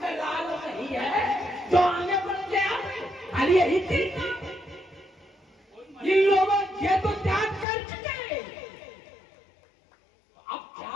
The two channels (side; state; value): right; drops out; at 7.7 s